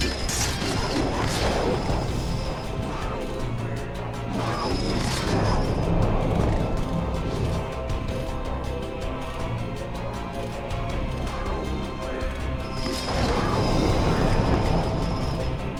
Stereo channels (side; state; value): both; identical; correlation 1.00